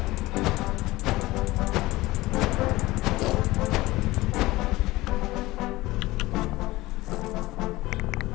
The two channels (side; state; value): right; quieter; 19.1 dB